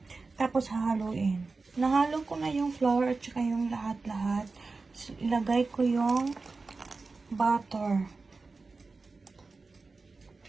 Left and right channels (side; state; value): left; quieter; 3.9 dB